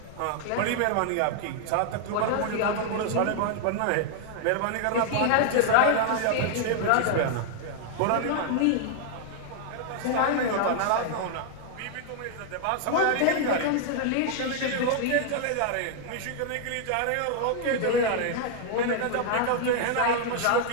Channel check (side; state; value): both; different; correlation 0.00